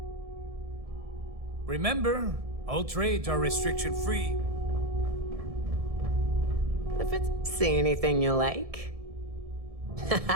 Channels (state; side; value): late; left; 1.7 ms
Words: Remember, all trades are restriction-free. If it's... See anything you like?